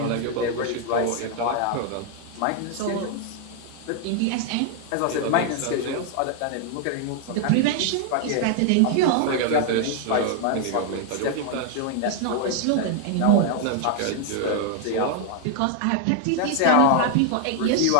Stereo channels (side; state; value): both; different; correlation 0.00